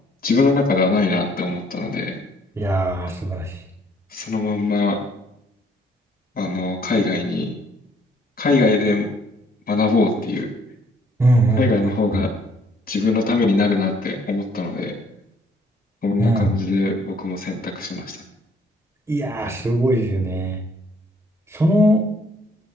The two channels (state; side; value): normal; both; correlation 0.64